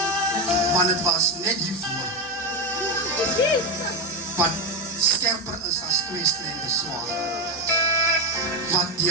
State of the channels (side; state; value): both; normal; correlation 0.12